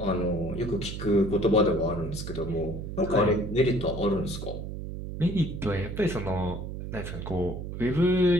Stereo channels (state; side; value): noise; right; hum, 7 dB below the sound